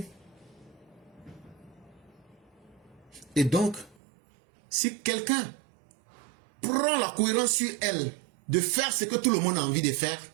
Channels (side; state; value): left; drops out; at 4.0 s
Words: Et donc, si quelqu'un prend la cohérence sur elle de faire ce que tout le monde a envie de faire,